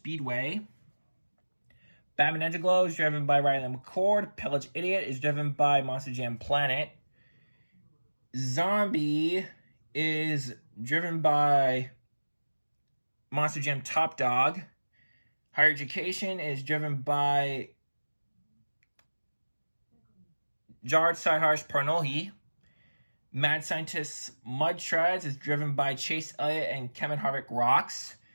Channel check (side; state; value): both; inverted; correlation -1.00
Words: Batman Ninja Glow is driven by Riley McCord. Pillage Idiot is driven by Monster Jam Planet. Zombie is driven by Monster Jam Top Dog. Higher Education is driven by Jared Sideharsh Parnohi. Mad Scientist Mud Treads is driven by Chase Elliott and Kevin Harvick Rocks.